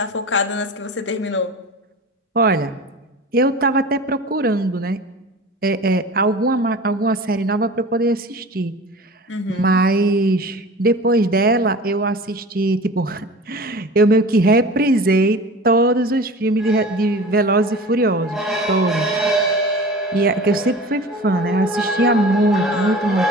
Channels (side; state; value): both; normal; correlation 0.38